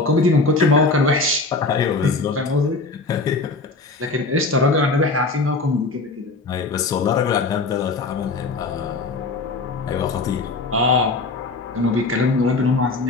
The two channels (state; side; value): quieter; right; 3.6 dB